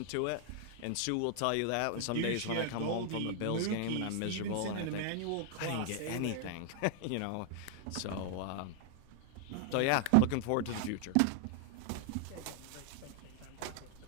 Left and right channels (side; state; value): both; different; correlation 0.00